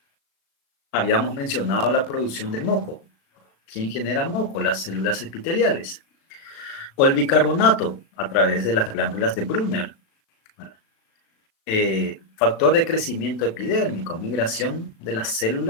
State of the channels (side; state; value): right; late; 36 ms